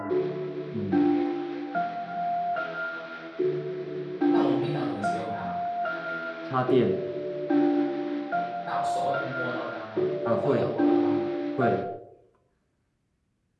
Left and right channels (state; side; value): identical; both; correlation 1.00